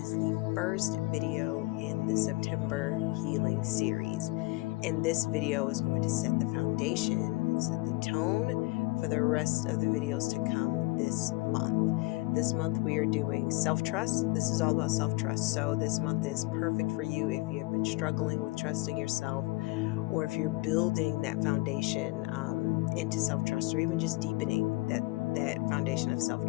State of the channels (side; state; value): right; quieter; 22.7 dB